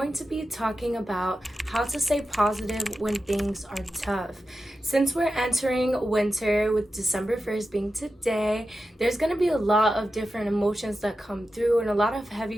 to be talking about how to stay positive when things are tough. Since we're entering winter with December 1st being today, there's going to be a lot of different emotions that come through and a lot of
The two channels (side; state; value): both; normal; correlation 0.91